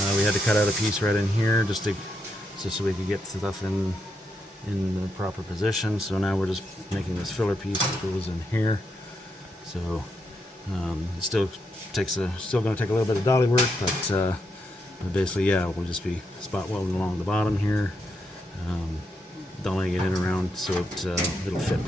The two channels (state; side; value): normal; both; correlation 0.81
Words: we had to cut out a piece right in here just so we could get stuff in the proper position. So now we're just making this filler piece that goes in here. So it still going to take a little bit of dolly work, but basically, yeah, we'll just be spot welding along the bottom here, dollying it in around so it'll fit